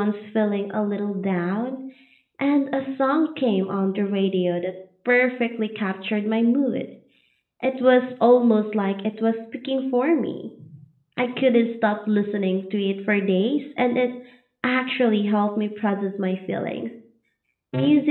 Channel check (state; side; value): identical; both; correlation 1.00